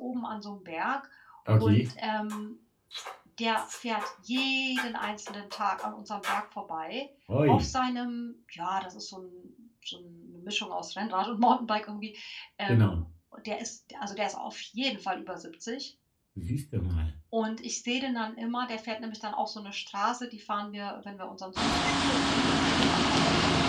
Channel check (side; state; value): both; identical; correlation 1.00